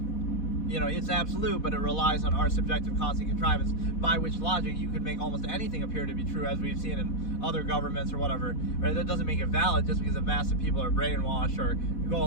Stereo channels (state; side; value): late; right; 4.1 ms